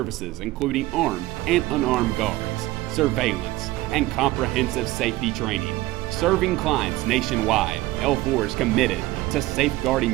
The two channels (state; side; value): quieter; left; 17.9 dB